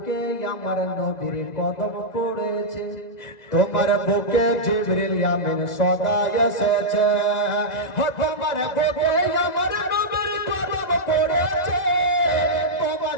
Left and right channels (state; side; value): late; right; 2.0 ms